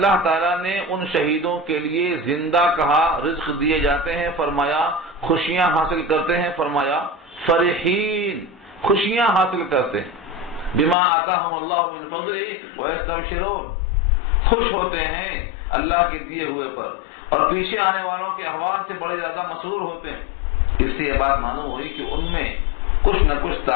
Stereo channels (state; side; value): drops out; right; at 11.0 s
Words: تعالیٰ نے ان شہیدوں کے لیے زندہ کہا، رزق دیے جاتے ہیں فرمایا، خوشیاں حاصل کرتے ہیں فرمایا، فرحین خوشیاں حاصل کرتے ہیں، بما آتاہم اللہ من فضلہ ویستبشرون خوش ہوتے ہیں اللہ کے دیے ہوئے پر، اور پیچھے آنے والوں کے احوال سے بڑے زیادہ مسرور ہوتے ہیں۔ اس سے یہ بات معلوم ہوئی کہ ان میں کچھ نہ کچھ